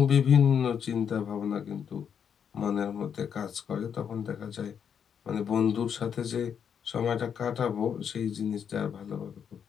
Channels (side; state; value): right; quieter; 7.7 dB